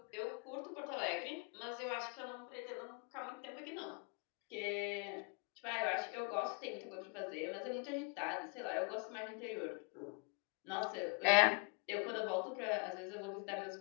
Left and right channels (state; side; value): quieter; right; 36.3 dB